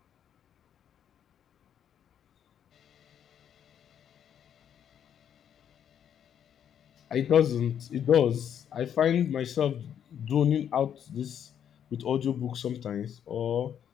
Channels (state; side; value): quieter; right; 9.1 dB